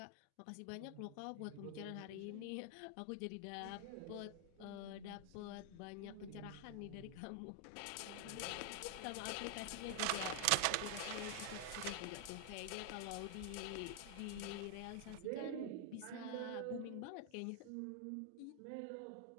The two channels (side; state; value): both; different; correlation 0.00